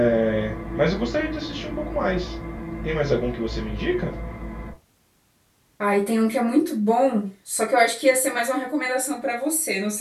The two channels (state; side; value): identical; both; correlation 1.00